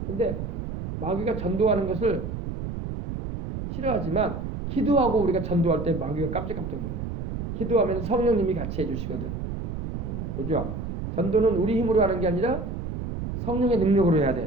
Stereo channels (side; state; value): right; noise; rumble, 5 dB below the sound